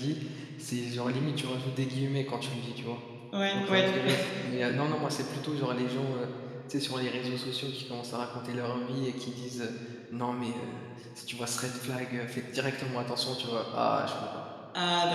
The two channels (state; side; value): identical; both; correlation 1.00